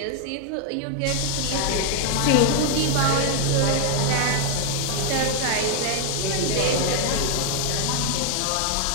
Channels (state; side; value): different; both; correlation 0.00